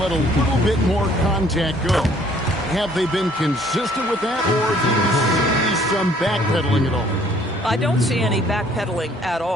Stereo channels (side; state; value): both; normal; correlation 0.60